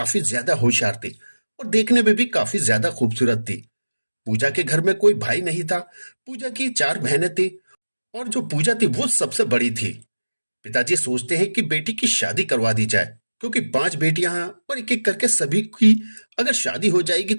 ज्यादा होशियार थी और देखने में भी काफी ज्यादा खूबसूरत थी। पूजा के घर में कोई भाई नहीं था। पूजा की चार बहनें थी और जो पूजा थी वो सबसे बड़ी थी। पिताजी सोचते हैं कि बेटी की शादी करवा दी जाए, क्योंकि पांच बेटियां हैं और एक एक करके सभी की अगर शादी हो जाएगी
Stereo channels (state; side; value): inverted; both; correlation -1.00